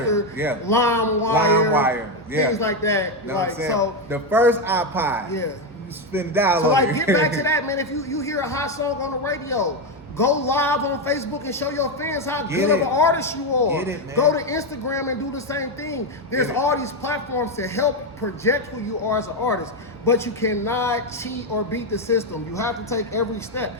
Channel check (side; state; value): both; normal; correlation 0.08